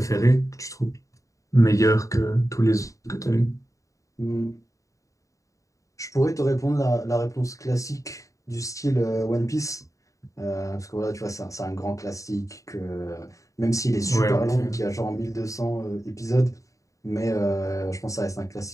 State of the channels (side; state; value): right; late; 0.16 ms